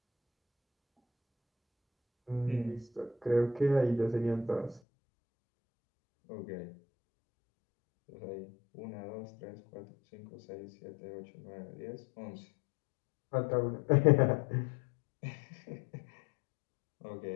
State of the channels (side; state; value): right; drops out; at 4.8 s